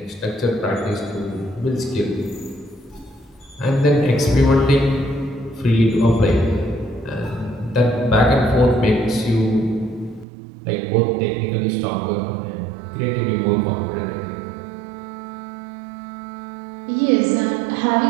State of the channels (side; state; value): left; drops out; at 10.2 s